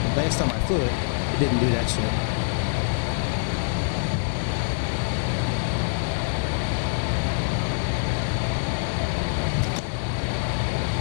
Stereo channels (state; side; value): silent; right; digital silence